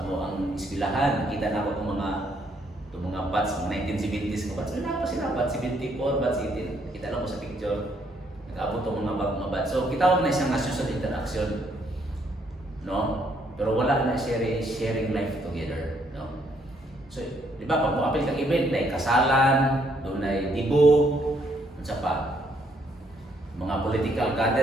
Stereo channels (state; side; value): normal; both; correlation 0.70